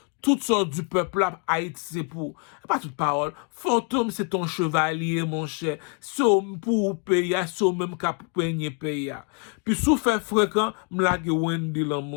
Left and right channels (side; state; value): right; quieter; 39.5 dB